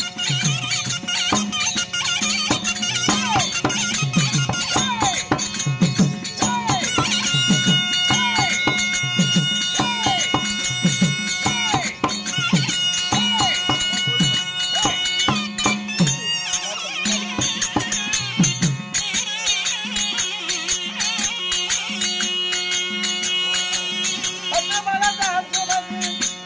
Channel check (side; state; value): both; identical; correlation 1.00